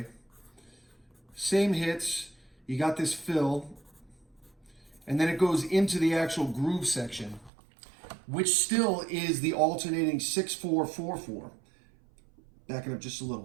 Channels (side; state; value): left; drops out; at 7.5 s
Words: Same hits. You got this fill. And then it goes into the actual groove section, which still is the alternating 6/4-4/4. Backing up just a